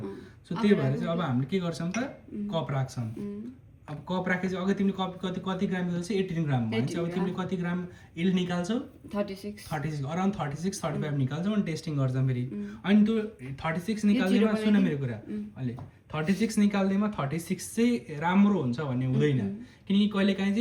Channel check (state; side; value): identical; both; correlation 1.00